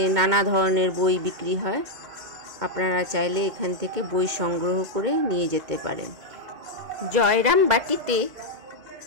নানা ধরনের বই বিক্রি হয়। আপনারা চাইলে এখান থেকে বই সংগ্রহ করে নিয়ে যেতে পারেন। জয়রামবাটিতে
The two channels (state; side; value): late; left; 2.2 ms